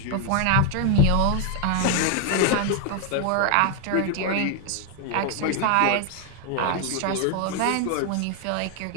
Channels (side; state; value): both; different; correlation 0.01